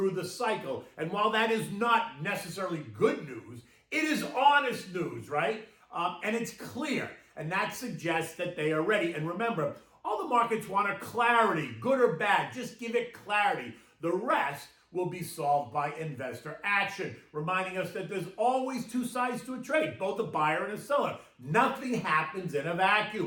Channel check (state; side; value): identical; both; correlation 1.00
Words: the cycle. And while that is not necessarily good news, it is honest news, right? And it's clear. And that suggests that they are ready. And remember, all the markets want are clarity, good or bad. Just give it clarity. The rest will be solved by investor action, reminding us that there's always two sides to a trade, both a buyer and a seller. Nothing happens in a